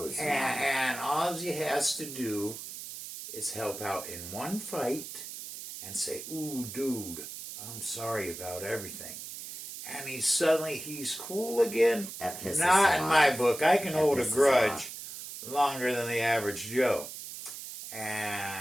And all he has to do is help out in one fight and say, "Ooh, dude, I'm sorry about everything." And he's cool again. That pisses Not him in off. my book. I can That hold a pisses him grudge off. longer than the average Joe.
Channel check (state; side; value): noise; right; hiss, 10 dB below the sound